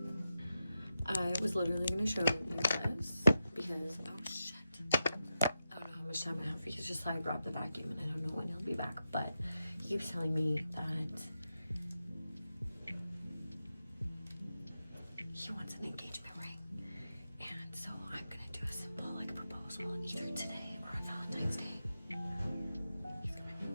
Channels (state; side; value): inverted; both; correlation -0.89